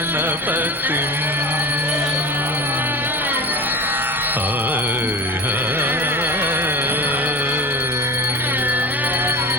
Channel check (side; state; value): both; normal; correlation 0.32